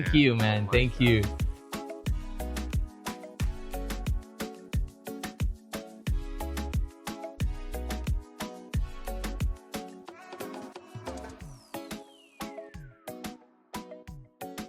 you, man. Thank you.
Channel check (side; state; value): both; identical; correlation 1.00